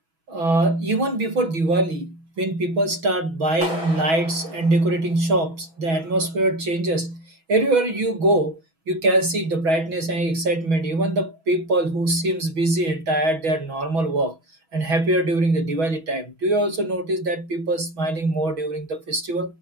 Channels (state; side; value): late; left; 6.2 ms